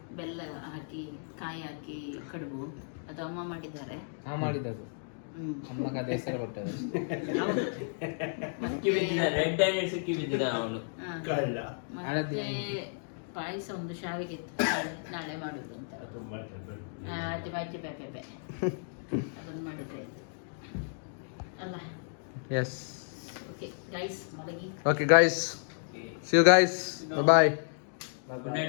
ಬೆಲ್ಲ ಹಾಕಿ ಕಾಯಿ ಹಾಕಿ ಕಡುಬು, ಅದು ಅಮ್ಮ ಮಾಡಿದ್ದಾರೆ. ಮಾಡಿದ್ದು ಅಮ್ಮ ಕಥೆ ಹೆಸರು ಕೊಟ್ಟದ್ದು ಸಿಕ್ಕಿ ಬಿದ್ದಿದ ರೆಡ್ ಹ್ಯಾಂಡೆಡ್ ಸಿಕ್ಕಿ ಬಿದ್ದಿದ ಅವನು. ಮತ್ತೆ ಪಾಯಸ ಒಂದು ಶಾವಿಗೆ ಇತ್ತು, ನಾಳೆ ಮಾಡುದು ಅಂತ. ಅಜ್ಜಿ ಬಾಜಿ ಬೇಬೆ ಅದನ್ನು ಮಾಡಿದ್ರೆ ಆಯ್ತು ಅಲ್ಲ. ಎಸ್ ಓಕೆ ಗೈಸ್, ಮಲಗಿ. Okay guys, see you guys, bye bye. Good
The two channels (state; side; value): silent; right; digital silence